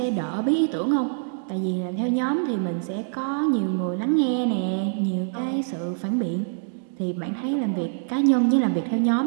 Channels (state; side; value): silent; left; digital silence